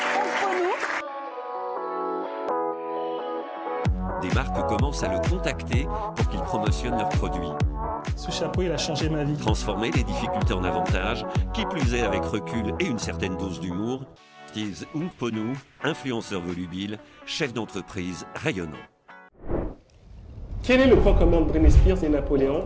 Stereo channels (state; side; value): identical; both; correlation 1.00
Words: Onkponu. Des marques commencent à le contacter pour qu'il promotionne leurs produits. Ce chapeau, il a changé ma vie. Transformer les difficultés en avantages, qui plus est avec recul et une certaine dose d'humour, Steve Onkponu, influenceur volubile, chef d'entreprise rayonnant. Quel est le point commun de Britney Spears et